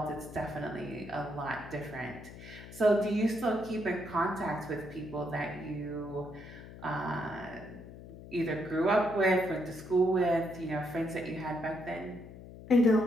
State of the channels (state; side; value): noise; left; hum, 15 dB below the sound